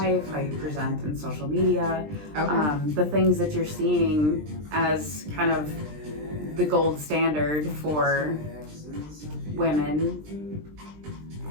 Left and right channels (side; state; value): left; late; 20 ms